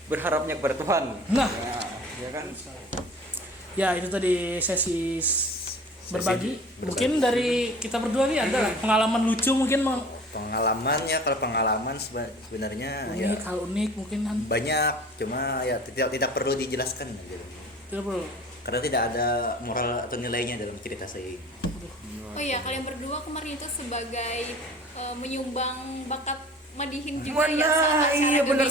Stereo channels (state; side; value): normal; both; correlation 0.44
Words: berharapnya kepada Tuhan. Nah, Ya kan? ya itu tadi sesi berbagi. Mungkin dari kita berdua nih ada pengalaman lucu mungkin Pengalamannya, kalau pengalaman sebenarnya ya unik mungkin kan. banyak, cuma ya tidak perlu dijelaskan gitu. Tidak perlu. Karena tidak ada moral atau nilainya dalam cerita saya ini. Oh iya, kalian berdua kemarin itu sebagai menyumbang bakat Madihin juga ya saat acara iya benar